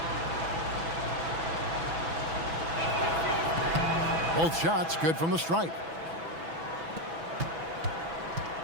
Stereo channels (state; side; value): late; left; 6.1 ms